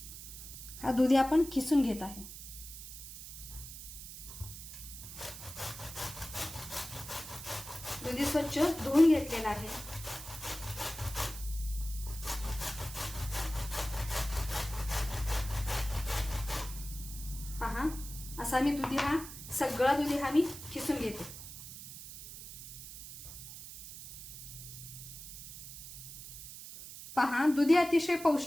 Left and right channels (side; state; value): right; noise; hiss, 12 dB below the sound